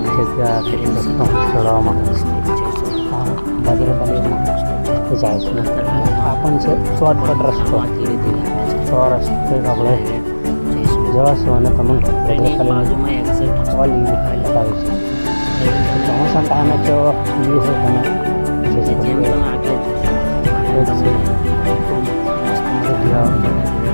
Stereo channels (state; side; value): inverted; both; correlation -1.00